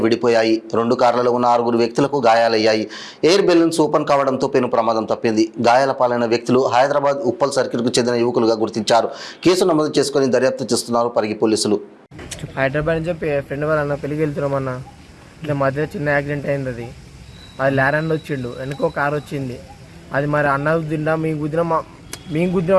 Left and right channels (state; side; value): identical; both; correlation 1.00